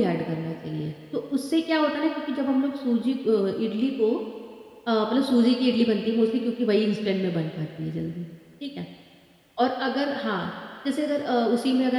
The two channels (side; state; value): both; identical; correlation 1.00